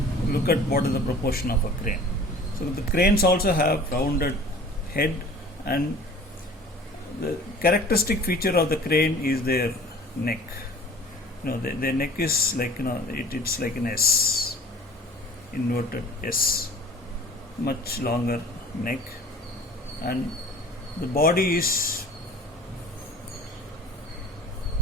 at what is the proportion of a crane. So the cranes also have rounded head, and the characteristic feature of the crane is their neck. Their neck is like it's like an S, inverted S, much longer neck, and the body is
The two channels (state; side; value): normal; both; correlation 0.46